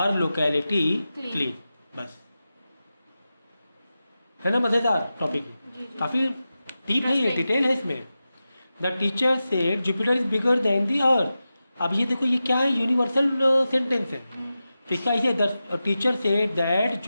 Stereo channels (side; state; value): both; inverted; correlation -0.93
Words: locality Clean. Clean, बस। है ना मज़ेदार टॉपिक? जी, जी. काफ़ी डीप है, ये Interesting. डिटेल है इसमें। The teacher said Jupiter is bigger than the earth. अब ये देखो ये क्या है, यूनिवर्सल सेंटेंस है। तो इसका ऐसे the teacher said that